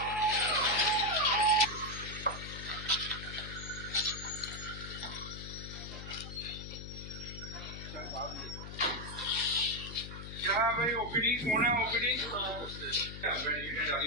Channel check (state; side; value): noise; left; hum, 10 dB below the sound